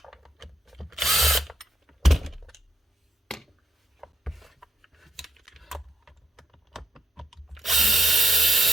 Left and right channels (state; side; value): normal; both; correlation 0.78